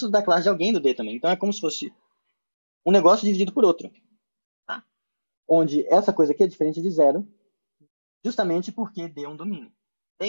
da classe de alguém do D também. Então, é como se fosse um negócio dividido por outro. Tá? Onde essa coisa aqui é diferente de zero, justamente porque D é um domínio. E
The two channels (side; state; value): both; inverted; correlation -1.00